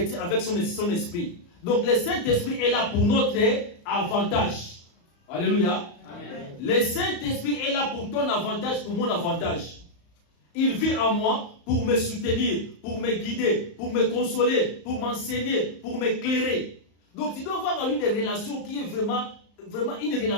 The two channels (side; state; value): right; late; 35 ms